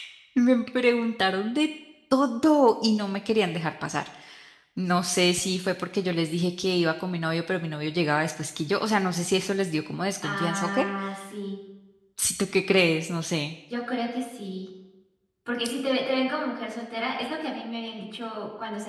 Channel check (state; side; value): identical; both; correlation 1.00